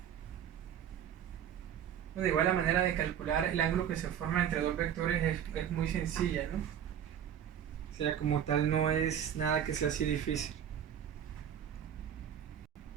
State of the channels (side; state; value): left; quieter; 9.3 dB